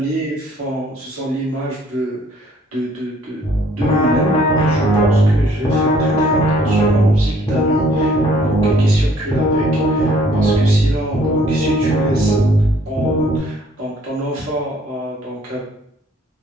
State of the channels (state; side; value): normal; both; correlation 0.60